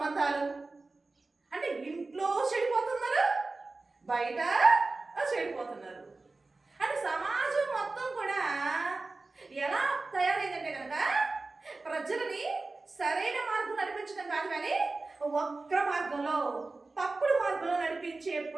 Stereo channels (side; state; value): left; quieter; 3.5 dB